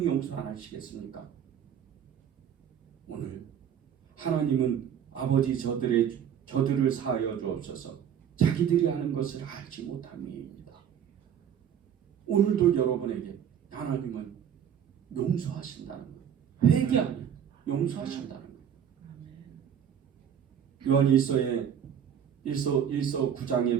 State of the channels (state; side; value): quieter; left; 8.8 dB